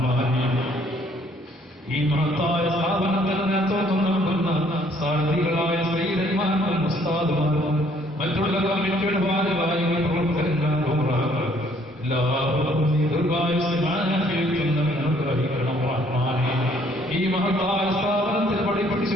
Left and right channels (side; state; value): both; normal; correlation 0.63